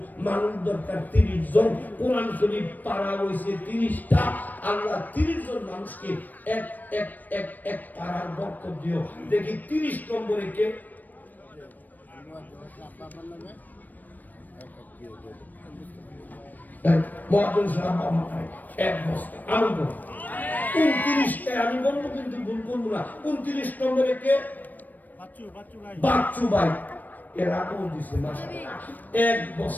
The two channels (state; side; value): late; right; 0.086 ms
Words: মানুষ দরকার 30 জন। কোরআন শরীফ পারা হইছে 30টা। আল্লাহ 30 জন মানুষকে এক এক এক এক পারার বরকত দিও। দেখি 30 নম্বরে কে? মহাজন সাহেব আমায় 1 বস্তা আমি বলবো 29টা আমি বলবো, কিন্তু ভুল করবো না। 29 নম্বরে কে? বাচ্চু ভাই। এরা কোন দিছে মাশাআল্লাহ 1